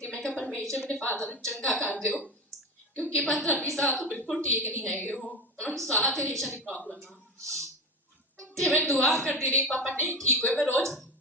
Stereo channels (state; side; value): normal; both; correlation 0.25